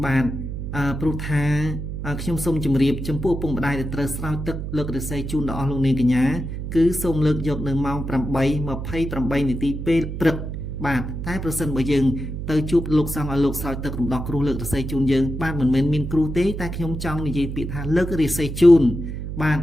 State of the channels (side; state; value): right; noise; hum, 6 dB below the sound